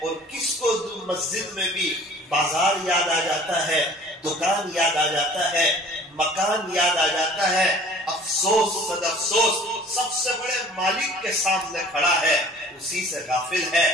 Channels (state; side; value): normal; both; correlation 0.49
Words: اور کس کو مسجد میں بھی بازار یاد آ جاتا ہے، دکان یاد آ جاتا ہے، مکان یاد آ جاتا ہے۔ افسوس صد افسوس، سب سے بڑے مالک کے سامنے کھڑا ہے، اسی سے غافل ہے۔